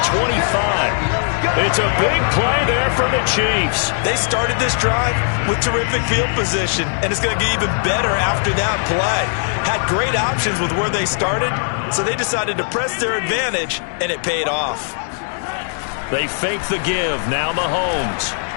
25. It's a big play there for the Chiefs. They started this drive with terrific field position, and it's going to get even better after that play. Had great options with where they started, so they decided to press their advantage, and it paid off. They fake the give. Now Mahomes.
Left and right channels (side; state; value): right; silent; digital silence